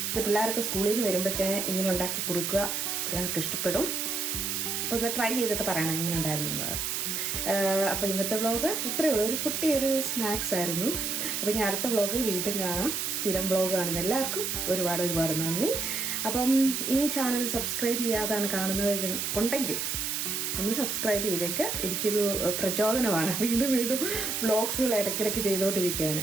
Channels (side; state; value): right; noise; hiss, 1 dB below the sound